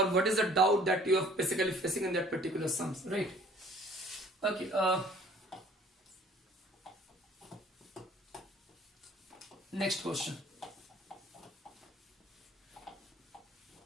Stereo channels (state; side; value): normal; both; correlation 0.53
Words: what is the doubt that you are basically facing in that particular sums, right? Okay. Next question.